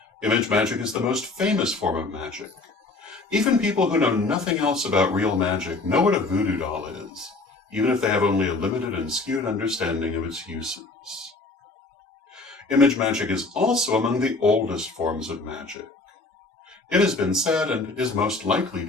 Image magic is the most famous form of magic. Even people who know nothing else about real magic know what a voodoo doll is, even if they have only a limited and skewed understanding of its uses. Image magic is also among the oldest forms of magic. It has been said, and is most likely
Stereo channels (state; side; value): quieter; right; 3.5 dB